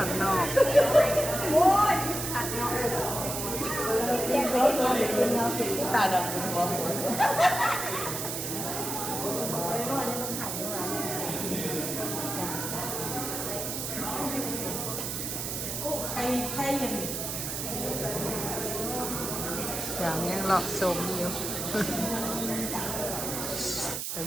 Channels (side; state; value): right; noise; hiss, 4 dB below the sound